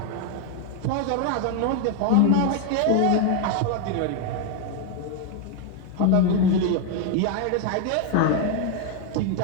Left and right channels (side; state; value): both; different; correlation 0.01